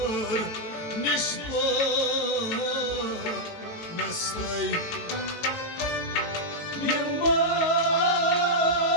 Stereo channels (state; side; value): late; right; 18 ms